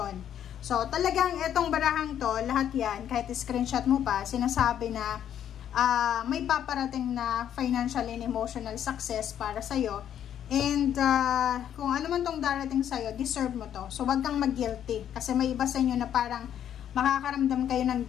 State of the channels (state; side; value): quieter; right; 9.9 dB